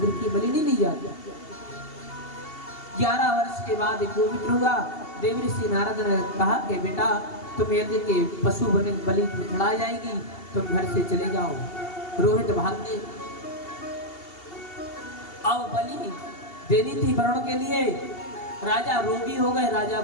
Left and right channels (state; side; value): late; right; 2.8 ms